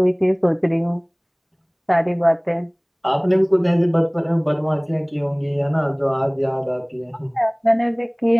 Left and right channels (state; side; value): identical; both; correlation 1.00